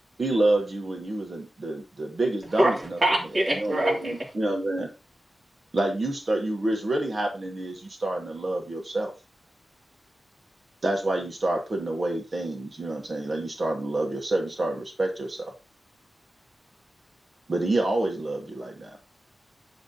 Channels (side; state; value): both; normal; correlation 0.93